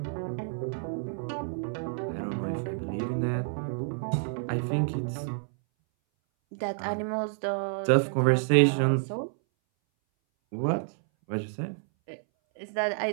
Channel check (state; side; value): silent; left; 58 dB below the other